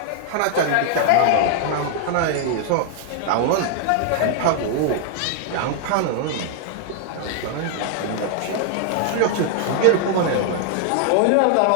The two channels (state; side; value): different; both; correlation 0.00